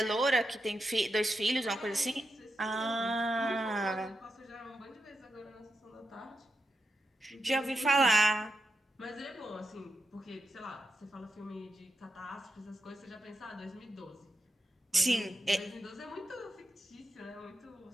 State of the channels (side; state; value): both; normal; correlation 0.87